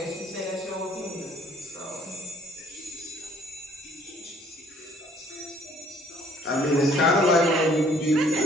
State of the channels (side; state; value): both; normal; correlation 0.60